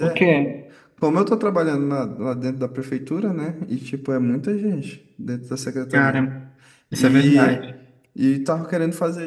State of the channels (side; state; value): both; identical; correlation 1.00